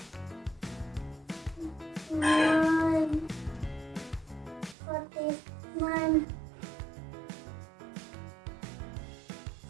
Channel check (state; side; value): drops out; left; at 4.8 s